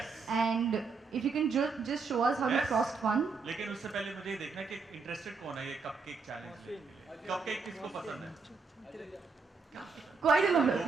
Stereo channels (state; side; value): quieter; left; 4.6 dB